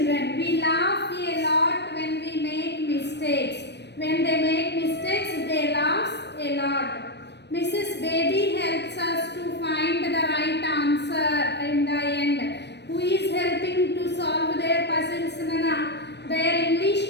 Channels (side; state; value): right; late; 0.50 ms